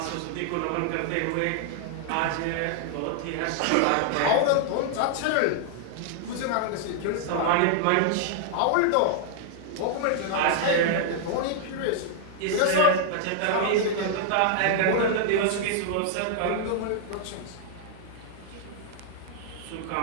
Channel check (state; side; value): different; both; correlation 0.00